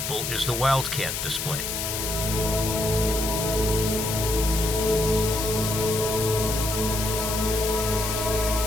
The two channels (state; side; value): noise; left; hiss, 3 dB below the sound